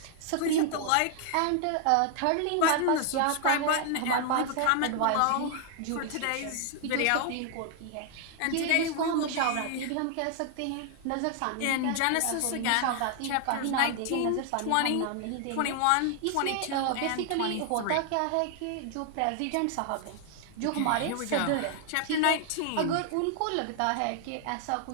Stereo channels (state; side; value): different; both; correlation 0.00